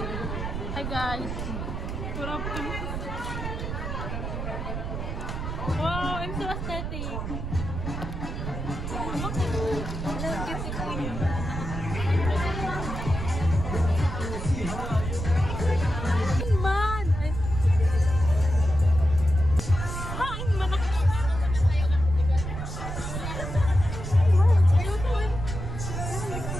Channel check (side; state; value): right; noise; rumble, 5 dB below the sound